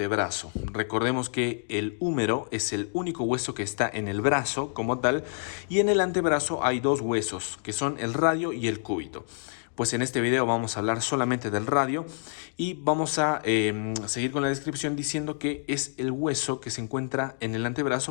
Recordemos que el húmero es el único hueso que está en el brazo como tal, y en el antebrazo hay dos huesos que son el radio y el cúbito. Pues en este video vamos a hablar solamente del radio y vamos a seguir con la descripción diciendo que es el hueso que se encuentra en el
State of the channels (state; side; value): silent; right; digital silence